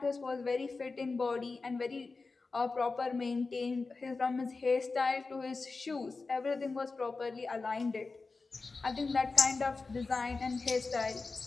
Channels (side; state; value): right; quieter; 4.0 dB